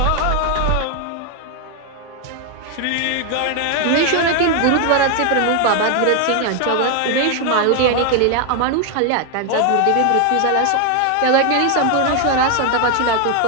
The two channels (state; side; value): different; both; correlation 0.01